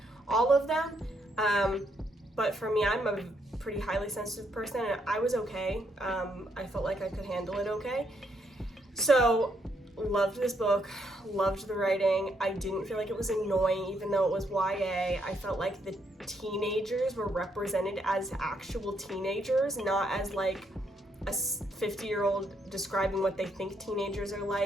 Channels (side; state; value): both; normal; correlation 0.75